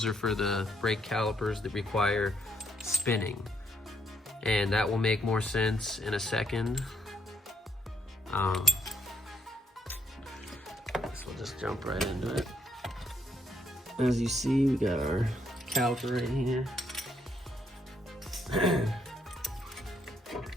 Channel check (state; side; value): normal; both; correlation 0.72